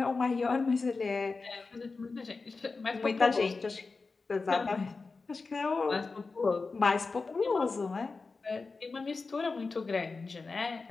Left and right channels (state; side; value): quieter; right; 4.1 dB